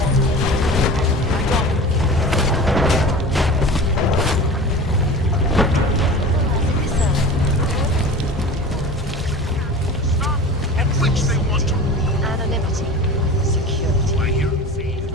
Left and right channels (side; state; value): both; normal; correlation 0.36